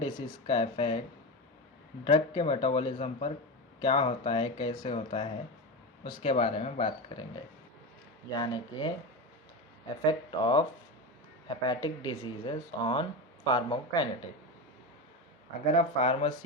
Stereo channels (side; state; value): both; normal; correlation 0.19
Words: का इफ़ेक्ट ड्रग के मेटाबॉलिज्म पर क्या होता है, कैसे होता है, उसके बारे में बात करेंगे। यानी कि effect of hepatic diseases on pharmacokinetic. अगर आप